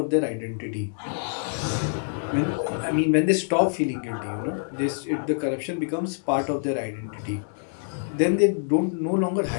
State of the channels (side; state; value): right; silent; digital silence